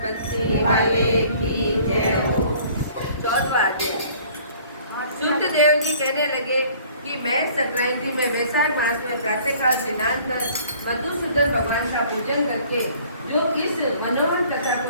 बंसी वाले की जय हो। 14वां अध्याय। सूत देव जी कहने लगे कि मैं संक्रांति में वैशाख मास में प्रातःकाल स्नान कर मधुसूदन भगवान का पूजन करके जो इस मनोहर कथा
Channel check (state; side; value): inverted; both; correlation -0.54